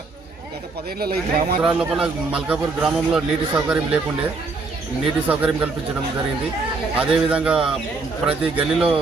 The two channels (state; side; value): quieter; left; 3.9 dB